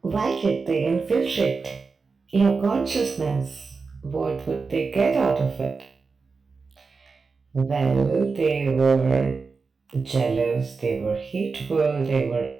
Why did they infiltrate your consciousness? What would they get out of it? Well, they were jealous, they were hateful, they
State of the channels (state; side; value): quieter; left; 4.6 dB